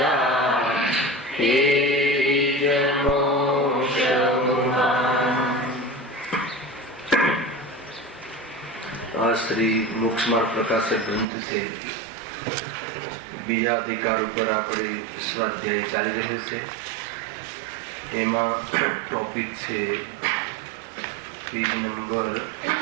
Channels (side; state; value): left; drops out; at 11.2 s